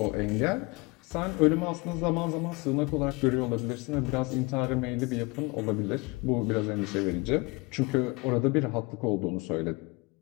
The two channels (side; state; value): right; quieter; 26.0 dB